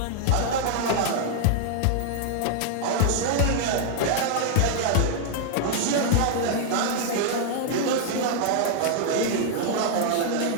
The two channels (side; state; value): both; different; correlation -0.01